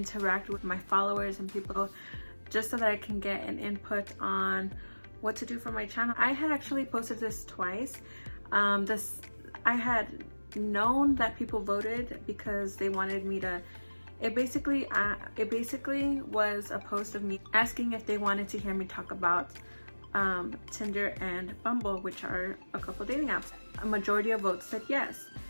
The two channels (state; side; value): inverted; both; correlation -1.00